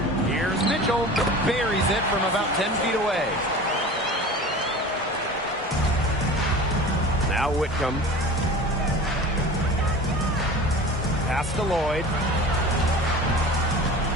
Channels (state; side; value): normal; both; correlation 0.37